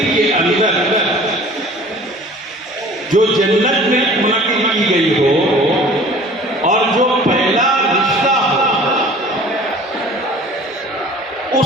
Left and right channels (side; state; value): both; normal; correlation 0.47